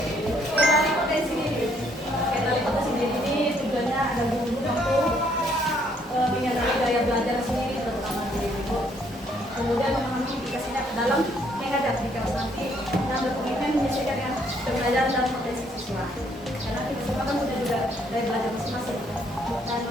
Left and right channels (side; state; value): both; normal; correlation 0.68